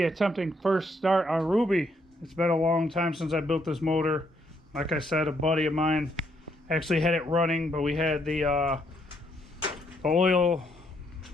attempting first start on Ruby. It's been a long time since I built this motor. Like I said, a buddy of mine actually had it running, but we had the oil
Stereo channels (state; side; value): normal; both; correlation 0.73